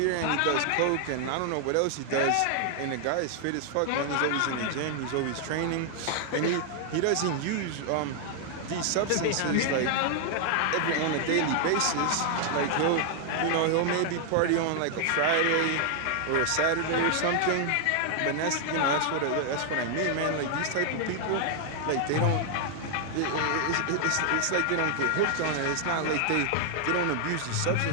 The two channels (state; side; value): different; both; correlation 0.00